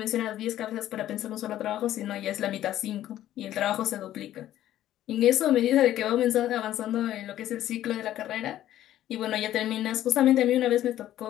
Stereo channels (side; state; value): right; quieter; 12.8 dB